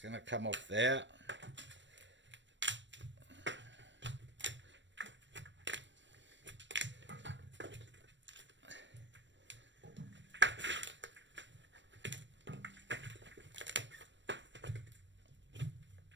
going to come off there.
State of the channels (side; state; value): left; late; 0.53 ms